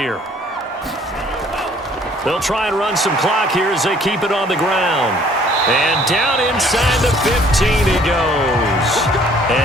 They'll try and run some clock here as they keep it on the ground. And down inside the 15 he goes.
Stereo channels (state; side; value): normal; both; correlation 0.58